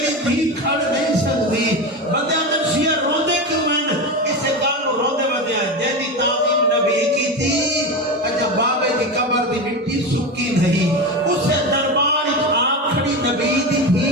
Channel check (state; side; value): normal; both; correlation 0.21